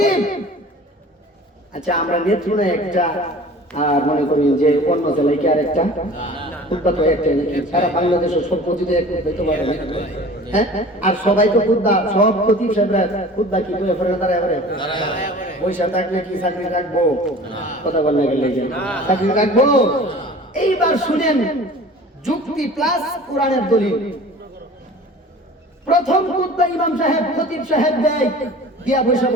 আচ্ছা আমরা নেত্রকোনা একটা আর মনে করি যে অন্য জেলায় কি আর একটা খুতবা তো একটা নাকি সারা বাংলাদেশের সব মসজিদে এক হইতে পারে না। হ্যাঁ আর সবাই তো খুতবা সব খতিব সাহেবরা খুতবা কি করে ফেরে দাঁড়ায় করে পয়সা থাকলে কি চাকরি রাখবো কথা বললে গেলে চাকরি রাখবো। এইবার শুনেন যুক্তি প্লাস কোরআনের দলিল। প্রথম খুতবা ইমাম সাহেব খতিব সাহেব দেয় দিয়া বৈশা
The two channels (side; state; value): both; normal; correlation 0.43